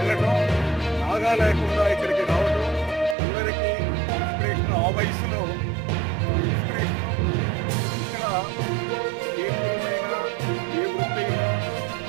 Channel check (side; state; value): left; drops out; at 3.2 s